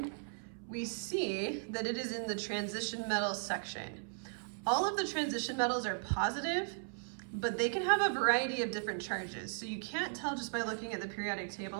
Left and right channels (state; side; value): silent; left; 53 dB below the other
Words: we see that it is in the transition metals section. All of the transition metals are positive, but they can have a variety of different charges. So you can't tell just by looking at the periodic